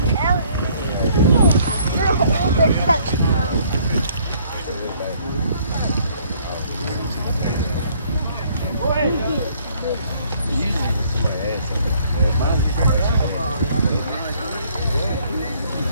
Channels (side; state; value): both; inverted; correlation -0.62